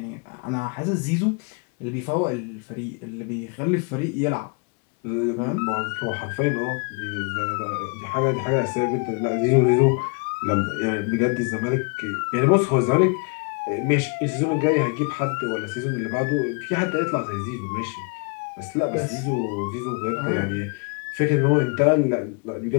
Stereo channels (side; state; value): right; quieter; 35.7 dB